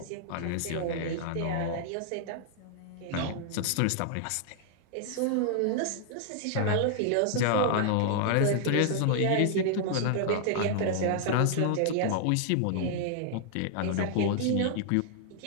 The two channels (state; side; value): different; both; correlation -0.01